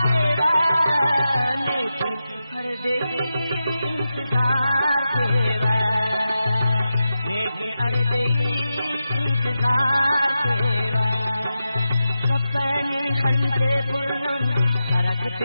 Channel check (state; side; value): inverted; both; correlation -0.90